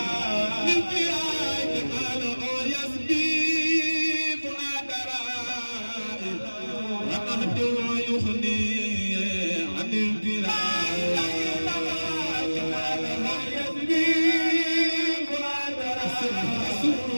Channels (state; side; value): inverted; both; correlation -1.00